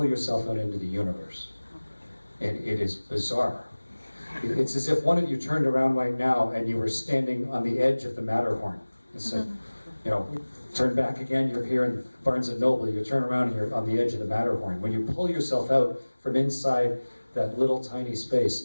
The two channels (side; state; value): both; inverted; correlation -1.00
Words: yourself out into the universe. And it is bizarre. It's as if one of you turned around right now and you were standing on the edge of the Matterhorn. It's like, you know, turn back again, you're here in Barnes & Noble, you turn around and you're on the edge of the Matterhorn. When you pull yourself out from inside that little tiny